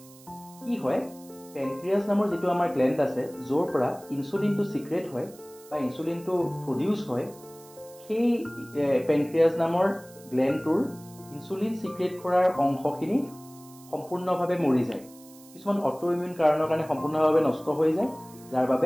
কি হয়? পেনক্ৰিয়াছ নামৰ যিটো আমাৰ গ্লেণ্ড আছে য'ৰ পৰা ইনচুলিনটো চিক্ৰেট হয় বা ইনচুলিনটো প্ৰডিউচ হয়, সেই পেনক্ৰিয়াছ নামৰ গ্লেণ্ডটোৰ ইনচুলিন চিক্ৰেট কৰাৰ অংশখিনি সম্পূৰ্ণভাৱে মৰি যায়। কিছুমান অটোইমিউন কাৰণৰ কাৰণে সম্পূৰ্ণভাৱে নষ্ট হৈ যায়, যাৰ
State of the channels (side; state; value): right; noise; hiss, 23 dB below the sound